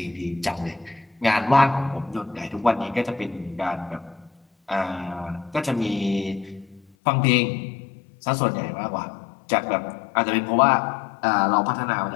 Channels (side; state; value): right; drops out; at 6.8 s